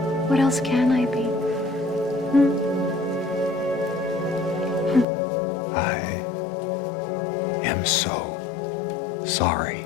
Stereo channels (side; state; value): right; drops out; at 5.1 s